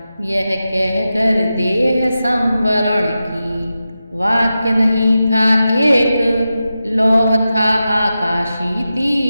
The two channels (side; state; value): both; inverted; correlation -0.91